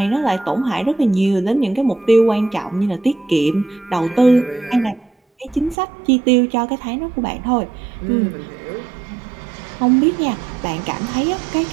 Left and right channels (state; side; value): drops out; left; at 5.8 s